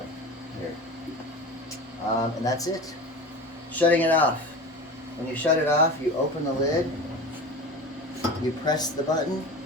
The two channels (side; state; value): both; normal; correlation 0.31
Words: here. And that's it. Shutting it off. When you shut it off, you open the lid, you press the button